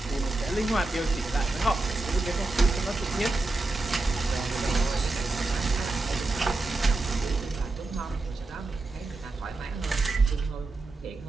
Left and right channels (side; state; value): left; quieter; 3.1 dB